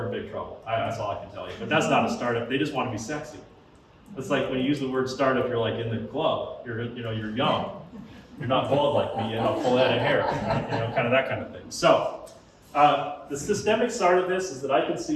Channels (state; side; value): identical; both; correlation 1.00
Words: in big trouble. That's all I can tell you. But that's not a startup. They just want to be sexy. It's like when you use the word startup, you're like in the club. You're young. You're not bald like me. You have a full head of hair. Right? Kind of that kind of thing. So the systemic side of this is that I can